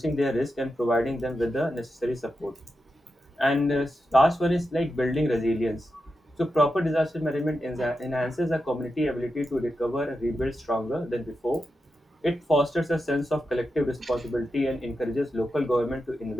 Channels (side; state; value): both; normal; correlation 0.89